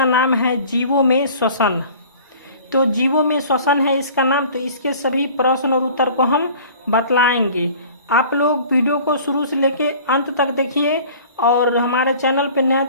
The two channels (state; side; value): inverted; both; correlation -0.46